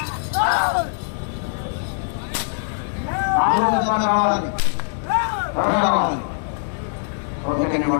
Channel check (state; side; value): silent; right; digital silence